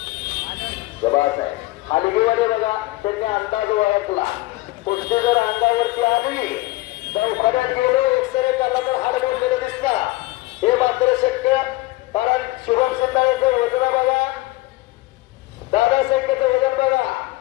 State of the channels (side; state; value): right; quieter; 20.1 dB